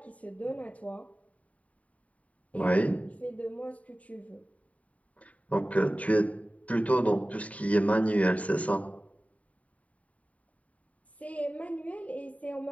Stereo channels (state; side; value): late; right; 0.068 ms